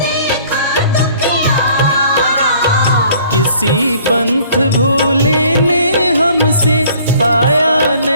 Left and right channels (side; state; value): both; inverted; correlation -0.55